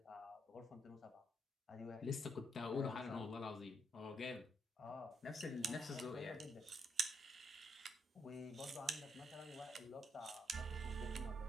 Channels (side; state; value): both; normal; correlation 0.77